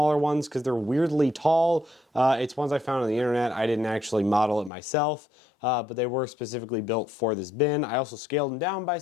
ones because they're weirdly tall. It's ones I found on the internet. I didn't actually model it myself, but they were specifically built for this bin. I also scaled them down by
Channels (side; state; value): right; drops out; at 4.7 s